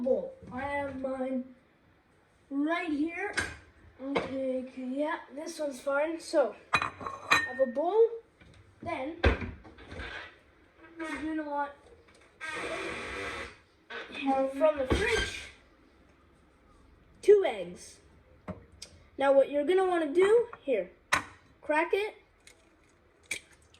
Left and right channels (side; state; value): both; identical; correlation 1.00